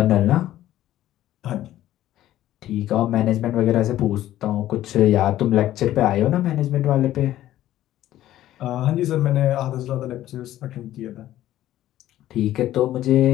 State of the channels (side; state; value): right; quieter; 13.6 dB